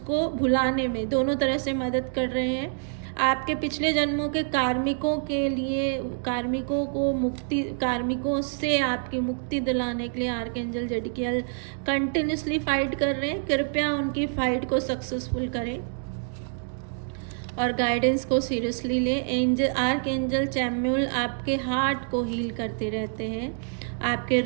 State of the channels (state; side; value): silent; left; digital silence